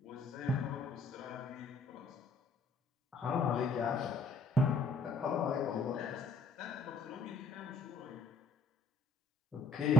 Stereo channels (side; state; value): right; quieter; 4.6 dB